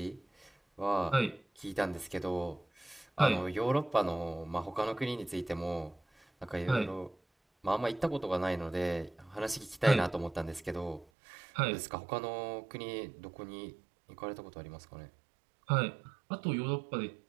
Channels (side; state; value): left; drops out; at 11.1 s